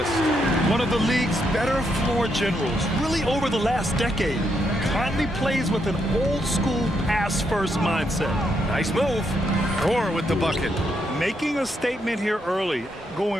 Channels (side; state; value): both; normal; correlation 0.78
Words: One of the league's better floor generals, really over the last decade. Conley plays with an old-school pass-first mindset. Nice move. Thor with the bucket. Making a statement here early,